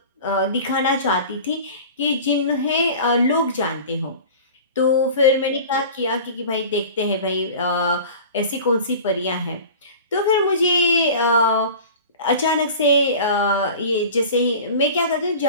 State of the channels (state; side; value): inverted; both; correlation -0.38